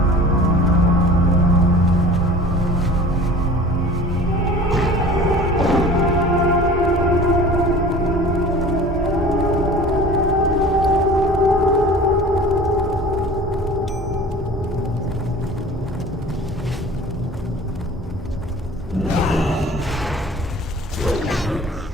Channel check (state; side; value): normal; both; correlation 0.42